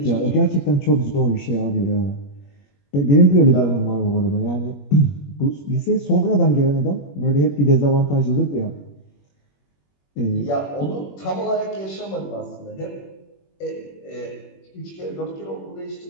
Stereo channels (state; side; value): late; right; 21 ms